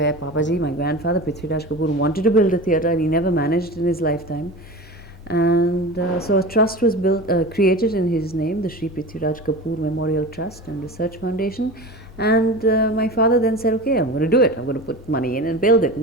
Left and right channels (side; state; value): both; normal; correlation 0.32